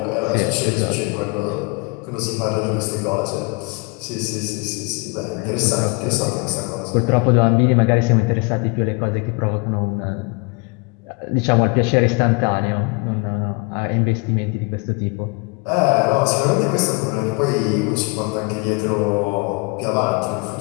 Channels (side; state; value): right; quieter; 29.3 dB